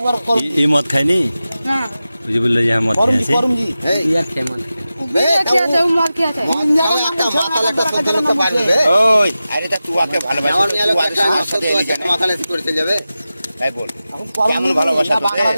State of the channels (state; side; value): inverted; both; correlation -0.94